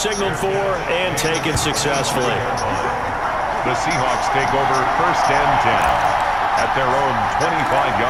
for and taken successfully. The Seahawks take over first and 10 at their own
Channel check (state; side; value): identical; both; correlation 1.00